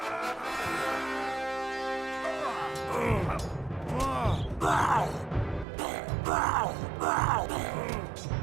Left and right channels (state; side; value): drops out; left; at 5.7 s